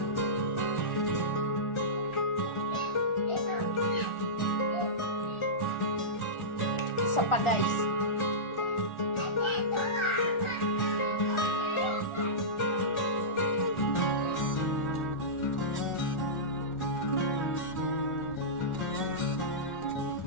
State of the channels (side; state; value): right; late; 1.4 ms